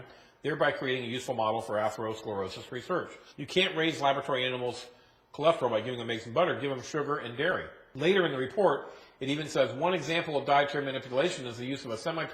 thereby creating a useful model for atherosclerosis research. You can't raise laboratory animals' cholesterol by giving them eggs and butter. Give them sugar and dairy. Later in the report, it even says one example of dietary manipulation is the use of a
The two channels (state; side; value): identical; both; correlation 1.00